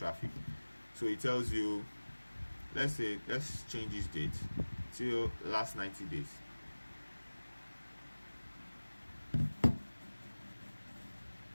So it tells you, let's change this date till last 90 days.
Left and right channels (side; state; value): both; inverted; correlation -1.00